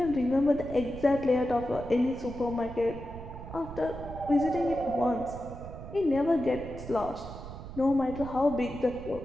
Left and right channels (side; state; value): right; noise; rumble, 12 dB below the sound